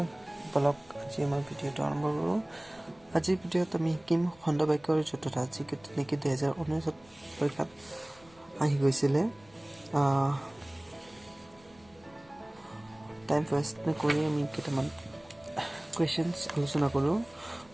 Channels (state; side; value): noise; left; rumble, 27 dB below the sound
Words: বলক আজি আমাৰ ভিডিঅ'টো আৰম্ভ কৰোঁ। আজিৰ ভিডিঅ'ত আমি শিকিম খণ্ড বাক্যৰ জতুটা, যি নেকি 2019 পৰীক্ষাত আহি গৈছিলে। টাইম ৱেষ্ট নকৰি আমি কেইটামান কুৱেশ্যনছ আলোচনা কৰোঁ।